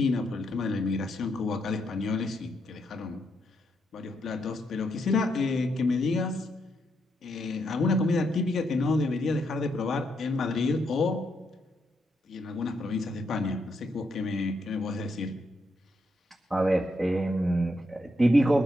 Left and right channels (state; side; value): normal; both; correlation 0.79